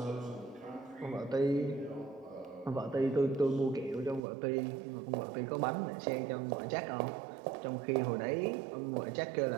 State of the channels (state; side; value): drops out; left; at 4.2 s